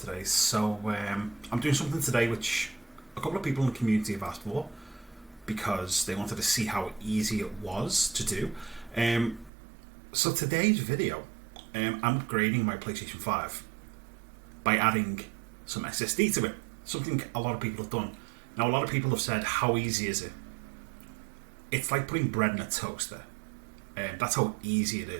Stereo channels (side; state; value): left; drops out; at 9.5 s